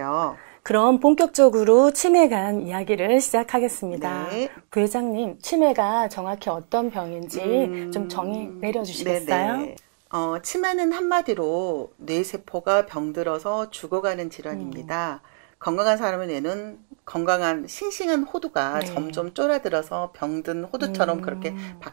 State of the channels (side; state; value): left; silent; digital silence